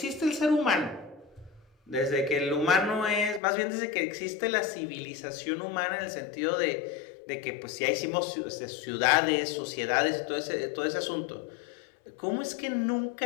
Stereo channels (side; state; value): right; drops out; at 3.4 s